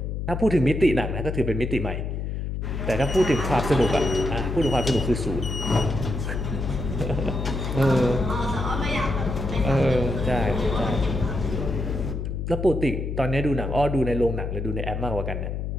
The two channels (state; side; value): noise; left; hum, 3 dB below the sound